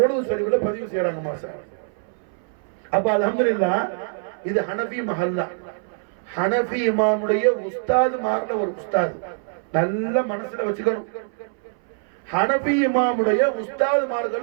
ஷரீஃப்ல பதிவு செய்யறாங்க மாஷா அல்லாஹ். அப்ப அல்ஹம்துலில்லாஹ் இது ஹனஃபி மஹல்லா. ஹனஃபி இமாமுடைய உஸ்தாது மார்ல ஒரு உஸ்தாது, நல்ல மனசுல வச்சுக்கணும். ஹனஃபி இமாமுடைய உஸ்தாது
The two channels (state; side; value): silent; left; 60 dB below the other